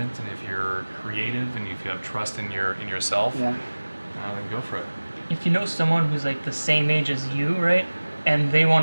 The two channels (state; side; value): inverted; both; correlation -1.00